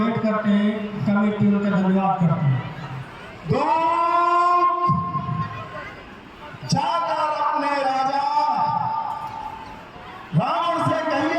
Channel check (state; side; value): identical; both; correlation 1.00